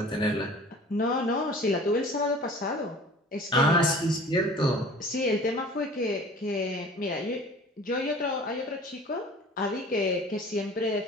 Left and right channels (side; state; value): both; normal; correlation 0.45